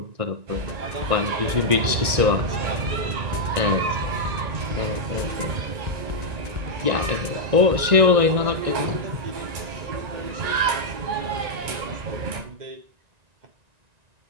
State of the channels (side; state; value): left; late; 1.9 ms